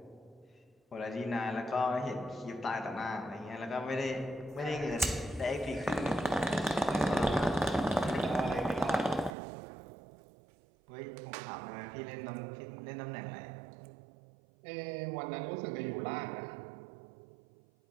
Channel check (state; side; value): drops out; left; at 9.3 s